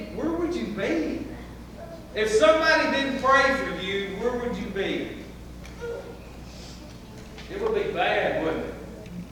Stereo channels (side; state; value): both; identical; correlation 1.00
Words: where would you be? If somebody didn't pray for you, where would you be? It would be bad, wouldn't it?